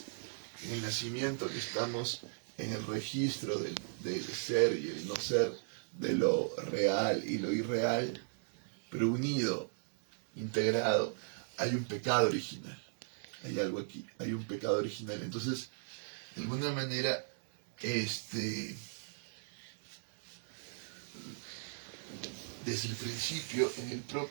En el nacimiento que estamos en el registro del ser y el no ser, de lo real y lo irreal, pero unido, integrado, hay un pecado original. Hay algo aquí, hay un pecado original. Entonces, de alguna manera, desde el principio, en el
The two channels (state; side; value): silent; left; digital silence